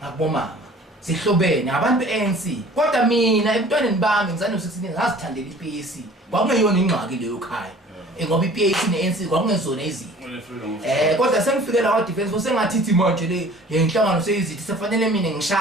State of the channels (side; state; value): both; normal; correlation 0.49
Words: ngakubomama sihlobene abantu beANC kodwa mina emntwaneni bami ngizane no16 ngazithandela iPAC kwakungeyona ingxaki leyo ekhaya ngoba iPAC neANC kwakungezona izinto kodwa sengifikela kwa defense force sengathithi manje le inhlangano seyizithi sefanele mina